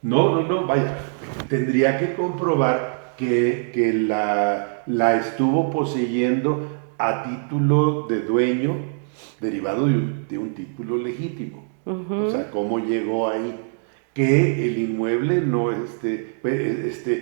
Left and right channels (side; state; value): left; silent; digital silence